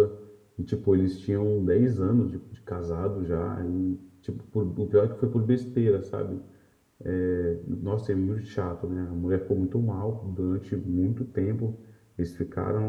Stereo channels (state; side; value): identical; both; correlation 1.00